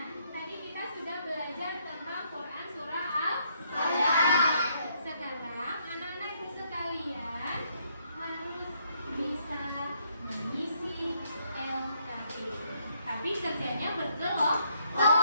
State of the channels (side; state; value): both; inverted; correlation -0.72